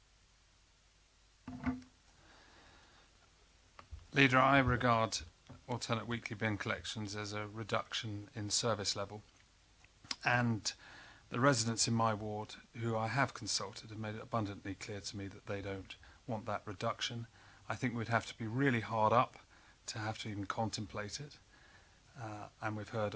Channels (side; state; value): both; identical; correlation 1.00